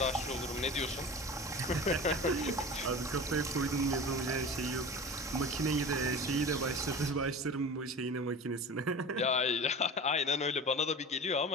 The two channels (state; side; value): normal; both; correlation 0.34